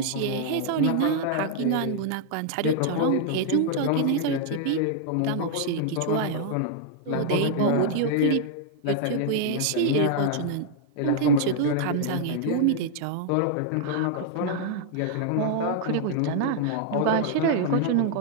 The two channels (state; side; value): different; both; correlation -0.01